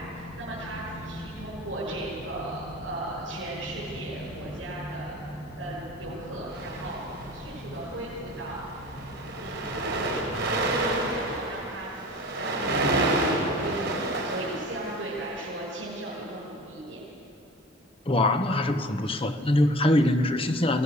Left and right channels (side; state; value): both; normal; correlation 0.42